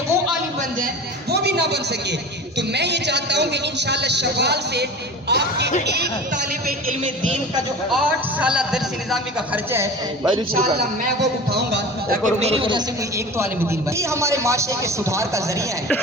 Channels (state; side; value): normal; both; correlation 0.35